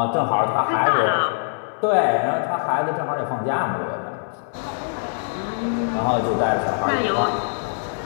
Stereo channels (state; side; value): silent; right; digital silence